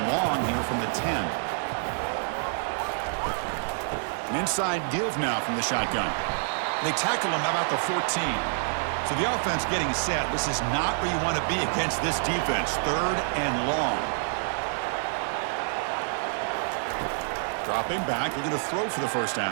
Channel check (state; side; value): silent; left; digital silence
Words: long here from the 10. An inside give now from the shotgun. They tackle him about the 14. So the offense getting set. This is not where you want to be against this defense. 3rd and long. Dropping back, looking to throw for the first